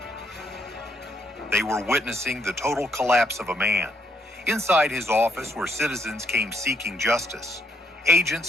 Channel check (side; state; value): both; normal; correlation 0.71